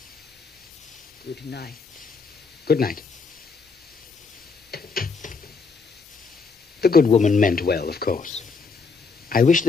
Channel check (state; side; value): quieter; right; 4.7 dB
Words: Good night. Good night. The good woman meant well, of course. I wish